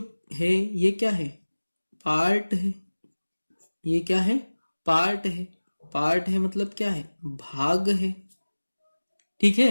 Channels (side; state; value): both; inverted; correlation -1.00